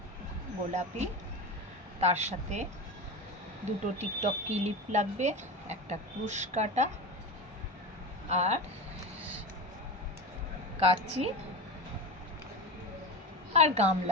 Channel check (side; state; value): both; normal; correlation 0.25